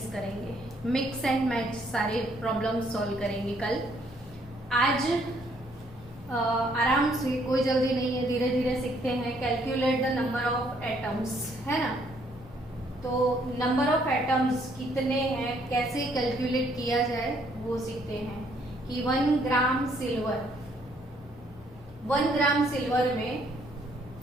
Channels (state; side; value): normal; both; correlation 0.67